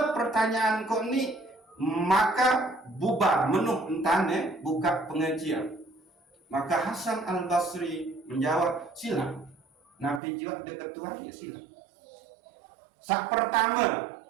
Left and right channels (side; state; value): left; drops out; at 10.2 s